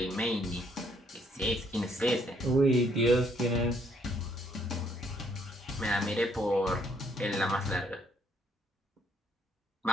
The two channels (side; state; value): both; normal; correlation 0.68